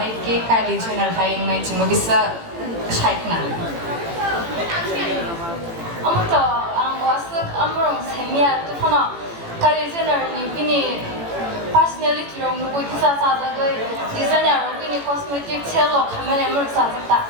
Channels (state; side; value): late; left; 18 ms